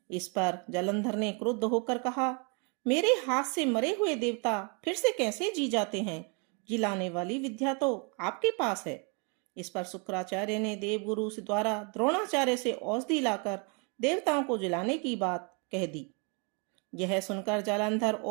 इस पर जालंधर ने क्रुद्ध होकर कहा, मेरे हाथ से मरे हुए देवता फिर से कैसे जी जाते हैं? जिलाने वाली विद्या तो आपके पास है। इस पर शुक्राचार्य ने देवगुरु से द्वारा द्रोणाचार्य से औषधि लाकर देवताओं को जिलाने की बात कह दी। यह सुनकर जालंधर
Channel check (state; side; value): quieter; left; 33.3 dB